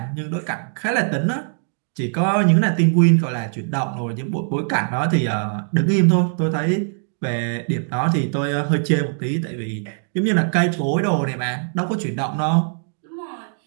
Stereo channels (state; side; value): silent; left; digital silence